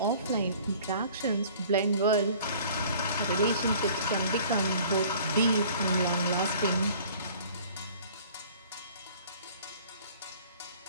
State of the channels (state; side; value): inverted; both; correlation -0.50